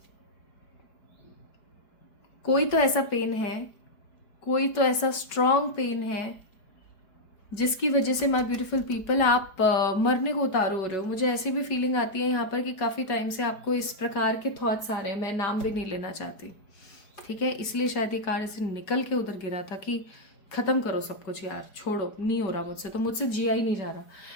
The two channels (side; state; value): right; late; 4.8 ms